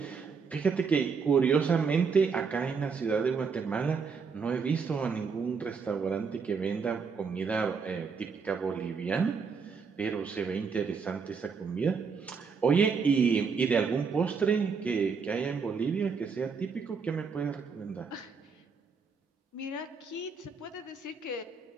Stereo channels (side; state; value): left; quieter; 5.5 dB